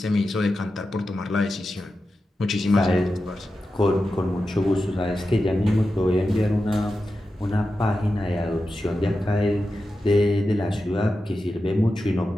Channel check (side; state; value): both; normal; correlation 0.91